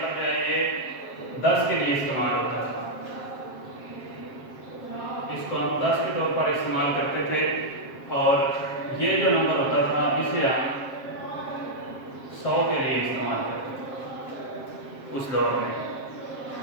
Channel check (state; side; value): late; right; 7.4 ms